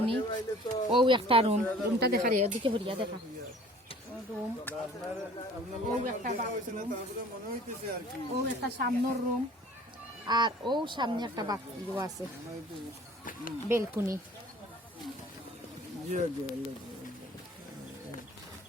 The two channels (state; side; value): normal; both; correlation 0.50